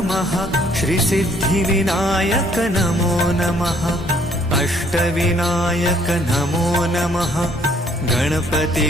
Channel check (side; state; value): both; normal; correlation 0.63